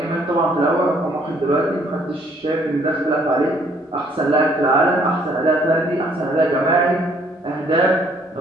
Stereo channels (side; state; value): both; normal; correlation 0.64